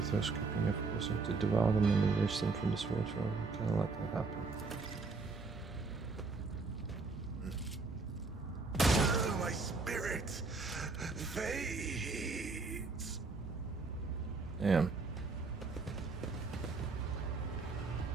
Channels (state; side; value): quieter; left; 4.0 dB